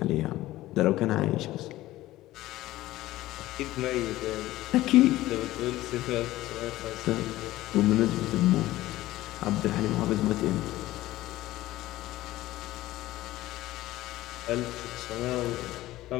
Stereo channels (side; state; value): right; quieter; 16.4 dB